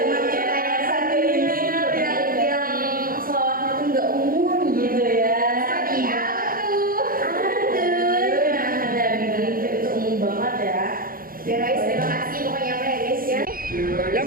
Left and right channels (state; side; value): late; left; 0.42 ms